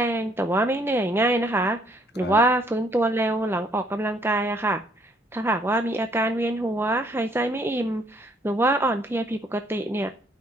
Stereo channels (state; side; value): normal; both; correlation 0.65